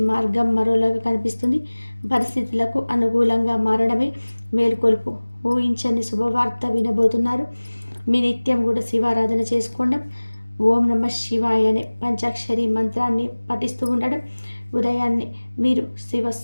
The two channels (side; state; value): both; inverted; correlation -1.00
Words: మరోలాగా కనిపిస్తుంది. పరిస్థితులకు అనుకూలంగా మారడమే మేలుకొల్పు. ఊహించని శుభవార్త వినబోతున్నారు. మీ నిత్యం కూడా శివారాధన చేసుకోవడం, ఓం నమ శివాయ అనే పంచాక్షరి మంత్రాన్ని పఠిస్తూ ఉండడం, ఉదయాన్నే మీరు